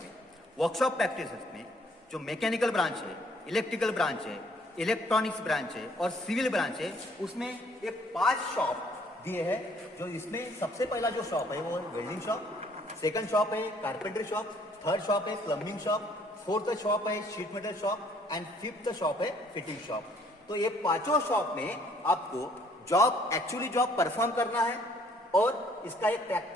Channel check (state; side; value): normal; both; correlation 0.62